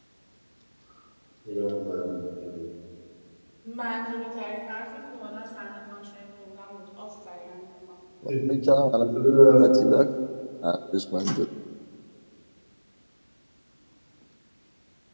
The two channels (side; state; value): both; inverted; correlation -1.00